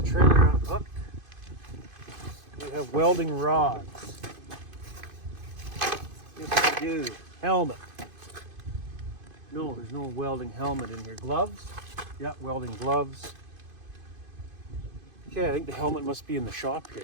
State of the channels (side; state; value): left; late; 2.5 ms